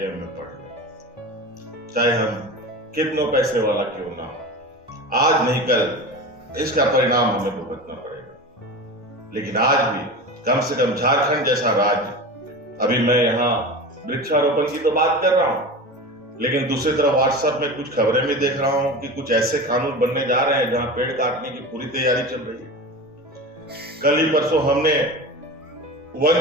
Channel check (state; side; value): normal; both; correlation 0.29